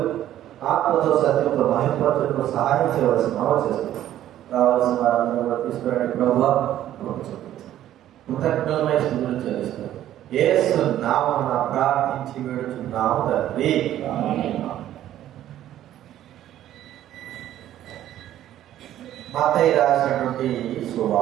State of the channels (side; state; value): left; quieter; 12.4 dB